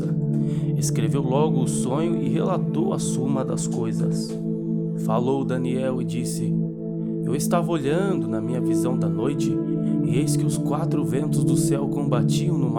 Escreveu logo o sonho e relatou a suma das coisas. Falou Daniel e disse: Eu estava olhando na minha visão da noite, e eis que os 4 ventos do céu combatiam no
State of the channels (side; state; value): both; identical; correlation 1.00